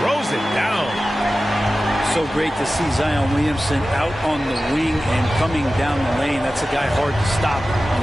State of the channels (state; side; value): normal; both; correlation 0.95